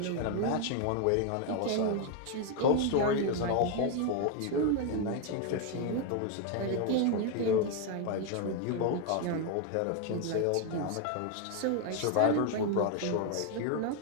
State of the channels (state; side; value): different; both; correlation 0.01